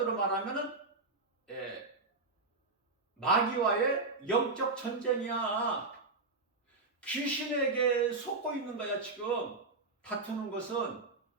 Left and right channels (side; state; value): left; quieter; 3.7 dB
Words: 말하면은 마귀와의 영적 전쟁이야. 귀신에게 속고 있는 거야. 지금 다투는 것은,